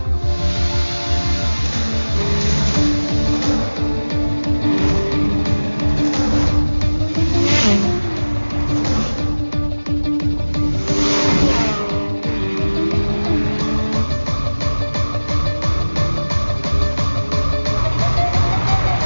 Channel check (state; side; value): inverted; both; correlation -1.00